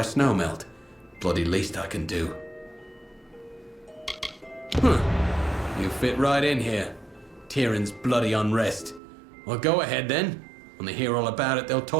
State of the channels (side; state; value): left; drops out; at 9.0 s